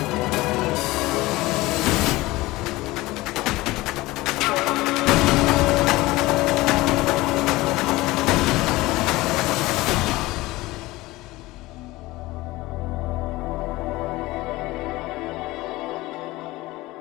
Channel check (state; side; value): quieter; right; 19.6 dB